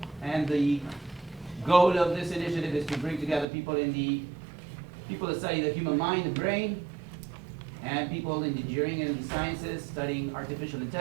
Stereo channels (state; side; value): drops out; left; at 3.5 s